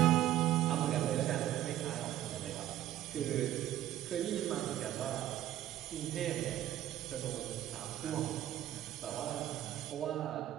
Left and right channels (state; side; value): quieter; left; 13.1 dB